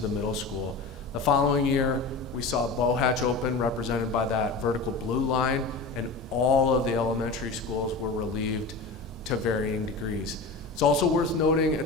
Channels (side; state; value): right; quieter; 3.7 dB